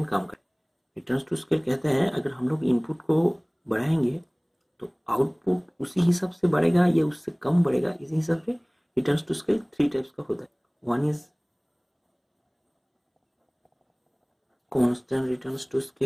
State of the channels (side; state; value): both; identical; correlation 1.00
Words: काम करे। रिटर्न्स टू स्केल कहता है अगर हम लोग इनपुट को बढ़ाएंगे तो आउटपुट उसी हिसाब से बढ़ेगा या उससे कम बढ़ेगा। इसी हिसाब से रिटर्न्स टू स्केल 3 टाइप्स का होता है। One is constant returns to